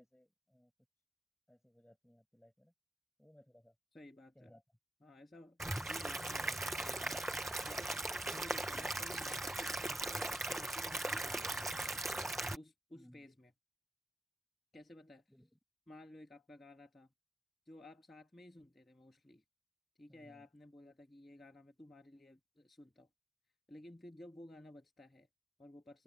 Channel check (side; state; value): both; normal; correlation 0.83